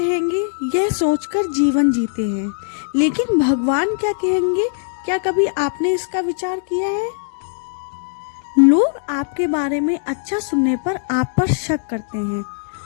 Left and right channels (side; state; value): right; silent; digital silence